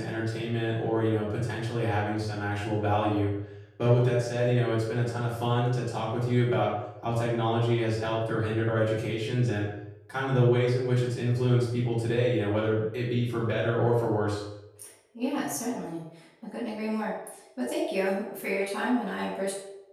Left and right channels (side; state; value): both; identical; correlation 1.00